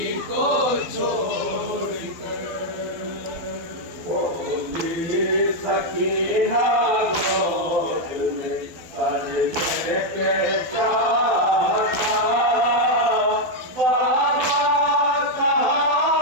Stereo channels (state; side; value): late; left; 12 ms